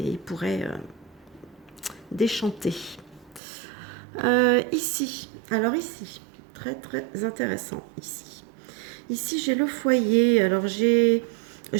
ils pourraient déchanter. Ici, très très intéressant ici. Ici, j'ai le foyer. Alors, je ne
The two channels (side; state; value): left; drops out; at 3.4 s